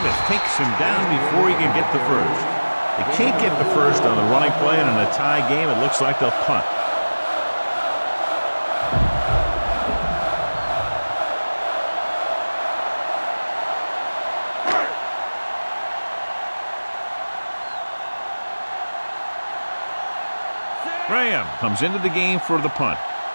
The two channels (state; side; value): inverted; both; correlation -1.00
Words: takes him down before he can get the first. They can't get the first on the running play, and in a tie game, it looks like they'll punt. Graham comes into the game for the punt.